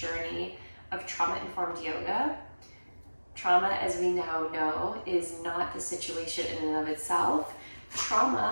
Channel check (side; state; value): both; inverted; correlation -1.00